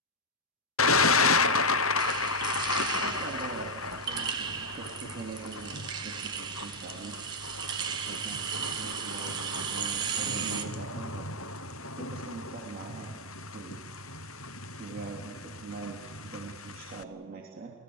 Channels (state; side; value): normal; both; correlation -0.01